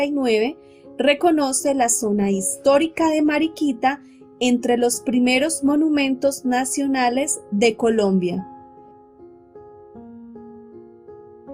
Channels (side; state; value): both; identical; correlation 1.00